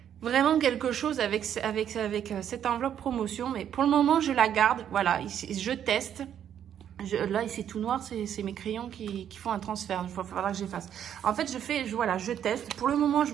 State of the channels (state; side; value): quieter; left; 9.6 dB